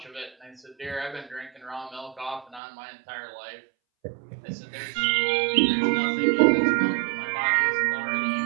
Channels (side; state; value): left; drops out; at 2.6 s